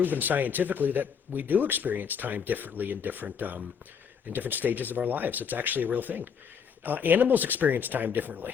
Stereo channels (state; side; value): quieter; right; 6.8 dB